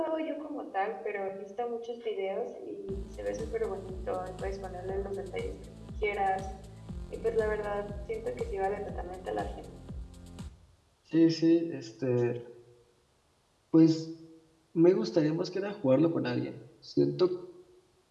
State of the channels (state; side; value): identical; both; correlation 1.00